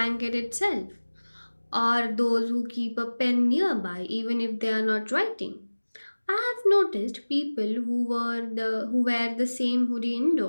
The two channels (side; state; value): both; inverted; correlation -1.00